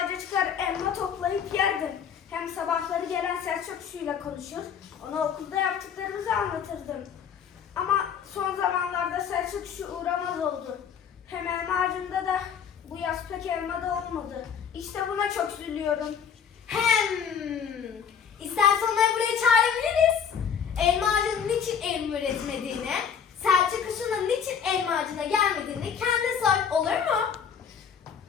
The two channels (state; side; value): quieter; right; 7.5 dB